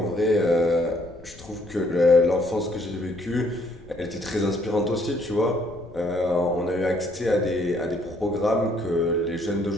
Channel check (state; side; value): noise; left; rumble, 21 dB below the sound